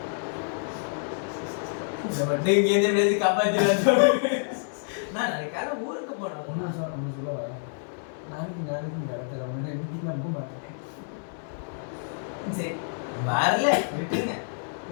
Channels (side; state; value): right; silent; 60 dB below the other